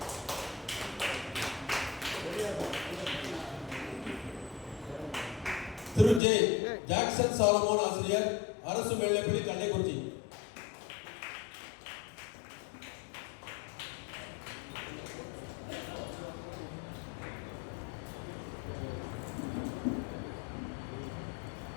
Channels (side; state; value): right; drops out; at 6.2 s